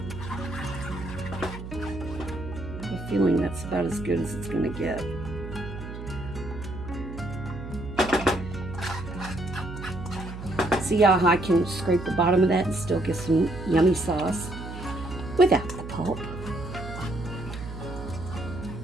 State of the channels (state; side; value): noise; right; hum, 10 dB below the sound